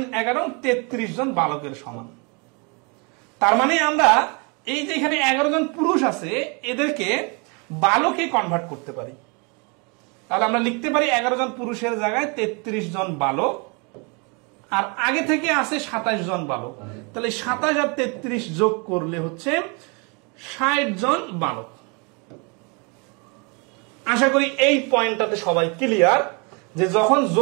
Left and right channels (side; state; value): left; quieter; 32.4 dB